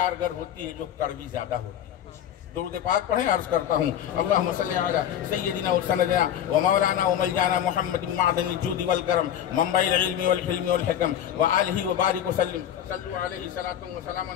होती है जो कड़वी ज्यादा होती है। दुरूद पाक पढ़े, अर्ज करता हूँ अल्लाहुम्मा सल्ली अला सय्यदिना व सनदना व मौलाना व मलजाना मुहम्मदिन मअदनिल जुदी वल करम मंबइल इल्मी वल हिल्मी वल हिकम व आलिहि व बारिक वसल्लम सल्लु अलैहि सलातु व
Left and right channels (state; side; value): quieter; right; 10.3 dB